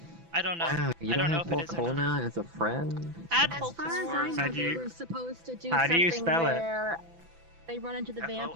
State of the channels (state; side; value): late; left; 6.0 ms